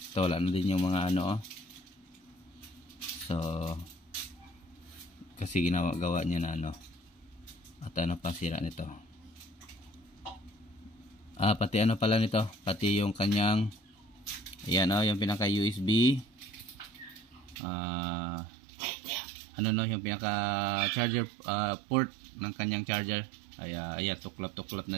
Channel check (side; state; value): left; drops out; at 17.6 s